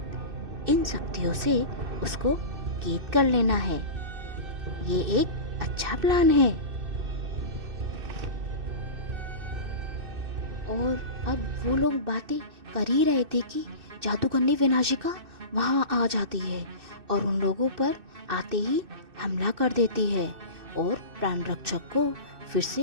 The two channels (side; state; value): left; late; 2.6 ms